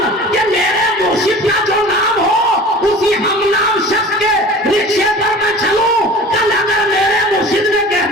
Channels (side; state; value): both; normal; correlation 0.40